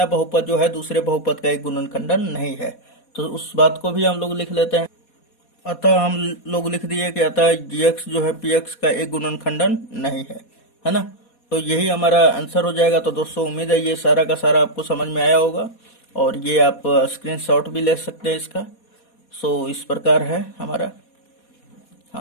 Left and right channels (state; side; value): late; right; 4.2 ms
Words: बहुपद जो है दूसरे बहुपद का एक गुणनखंडन नहीं है। तो उस बात को भी हम लोग लिख लेते हैं। अतः हम लोग लिख दिए कि अतः gx जो है px का एक गुणनखंडन नहीं है ना। तो यही हमारा आंसर हो जाएगा। तो दोस्तों उम्मीद है ये सारा का सारा आपको समझ में आया होगा, और ये आप स्क्रीनशॉट भी ले सकते हैं इसका। सो इस प्रकार है हमारा।